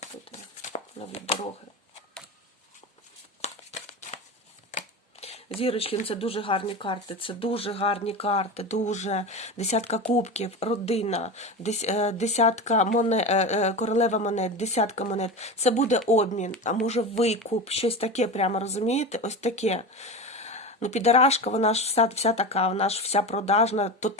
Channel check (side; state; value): both; normal; correlation 0.25